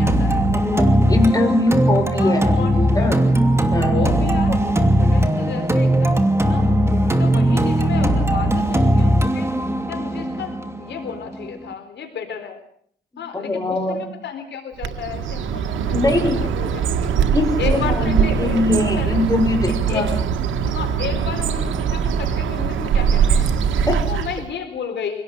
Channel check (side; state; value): both; normal; correlation 0.75